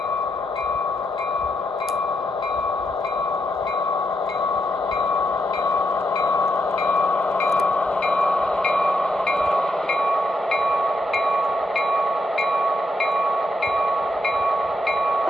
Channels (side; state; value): both; normal; correlation 0.82